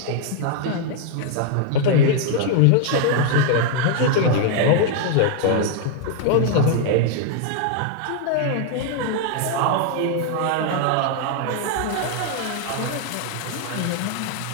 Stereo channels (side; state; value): both; different; correlation 0.00